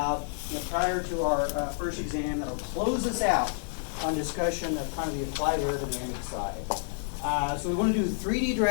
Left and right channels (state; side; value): silent; right; 58 dB below the other